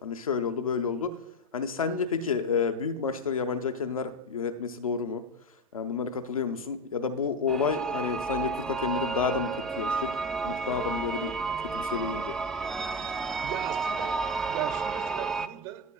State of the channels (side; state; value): both; normal; correlation 0.15